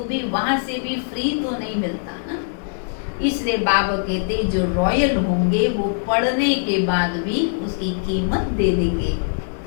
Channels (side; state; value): right; silent; digital silence